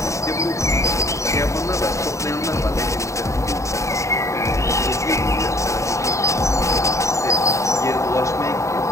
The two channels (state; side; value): late; right; 0.15 ms